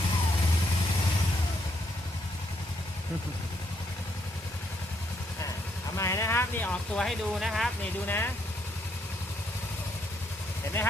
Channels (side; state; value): both; normal; correlation 0.74